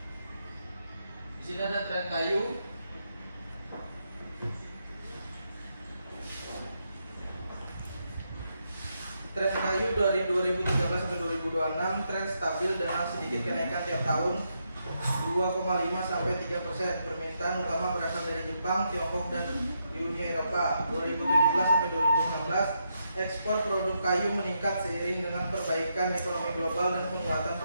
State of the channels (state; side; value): inverted; both; correlation -0.81